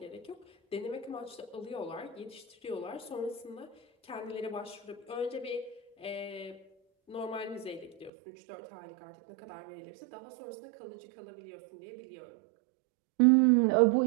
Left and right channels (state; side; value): drops out; left; at 8.1 s